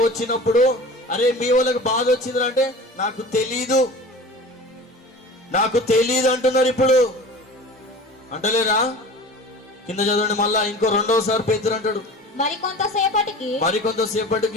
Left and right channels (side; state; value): both; normal; correlation 0.38